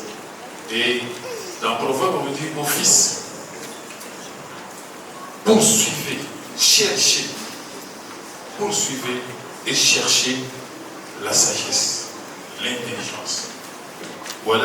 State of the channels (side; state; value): both; identical; correlation 1.00